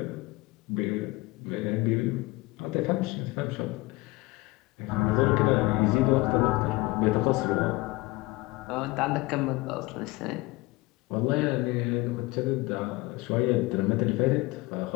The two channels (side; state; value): right; quieter; 22.1 dB